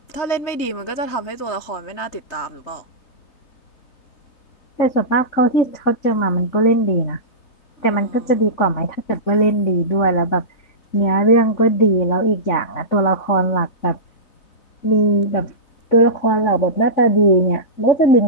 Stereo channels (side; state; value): right; late; 3.6 ms